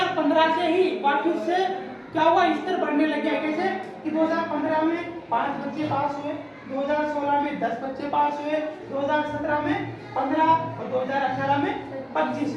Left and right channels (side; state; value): both; identical; correlation 1.00